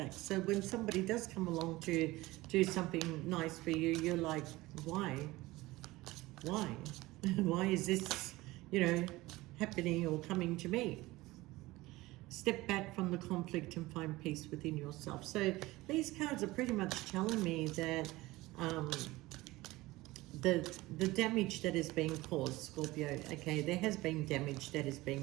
So when somebody does come along to do something nice for you, you're like, why? Why? Why is this, you know, happening or coming to me? Step back from the conflict and find peace within yourself. So these cards are pretty much telling me that the damage that is being caused, Scorpio, okay, there has been damage that is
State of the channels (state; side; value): quieter; left; 19.5 dB